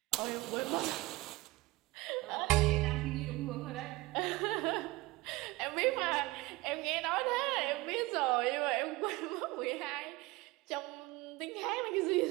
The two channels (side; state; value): left; quieter; 21.2 dB